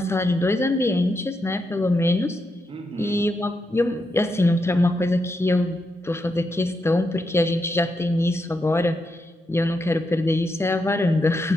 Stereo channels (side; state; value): both; normal; correlation 0.83